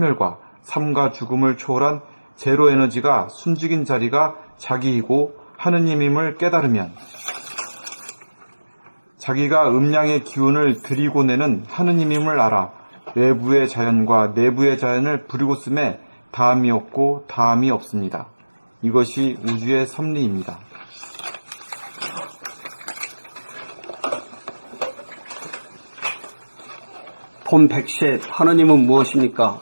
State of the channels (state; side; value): inverted; both; correlation -1.00